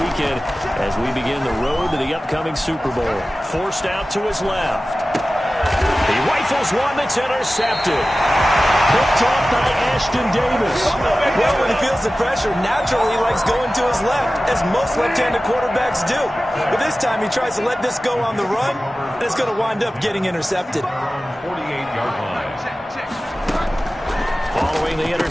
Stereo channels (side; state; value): both; normal; correlation 0.96